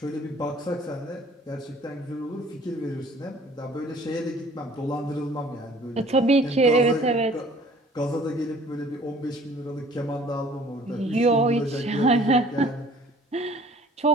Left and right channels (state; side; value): normal; both; correlation 0.53